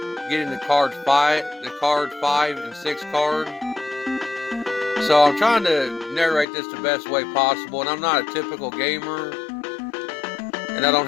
getting the card 5 and 6 card. So I'm trying to narrate this the best way possible, and I'm not a typical gamer, and I don't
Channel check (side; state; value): right; drops out; at 6.5 s